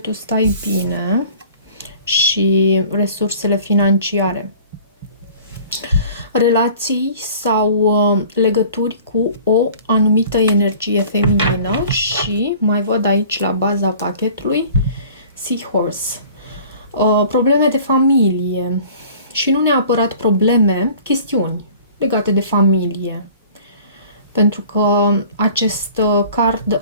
stai bine și resursele financiare. Relații sau legături cu o anumită energie feminină și mai văd aici la baza pachetului Seahorse. Probleme de familie și nu neapărat probleme, chestiuni legate de familie. Pentru că acest card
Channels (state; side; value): inverted; both; correlation -0.48